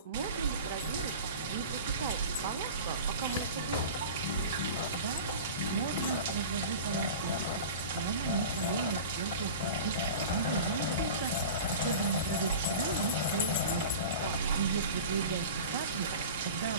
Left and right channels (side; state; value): both; inverted; correlation -0.35